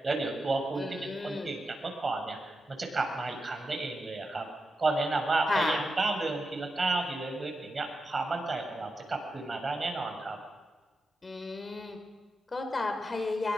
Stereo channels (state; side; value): normal; both; correlation 0.88